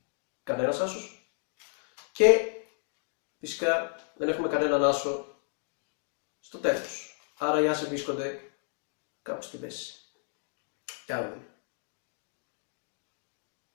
κανένας άσος και φυσικά δεν έχουμε κανέναν άσο στο τέλος. Άρα οι άσοι βρίσκονται κάπου στη μέση. Και άρα.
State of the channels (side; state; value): right; silent; 56 dB below the other